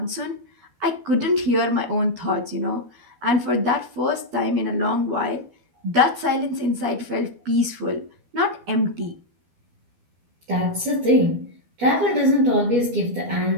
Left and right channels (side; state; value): left; late; 12 ms